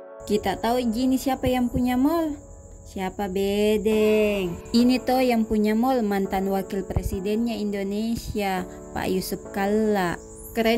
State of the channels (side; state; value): both; identical; correlation 1.00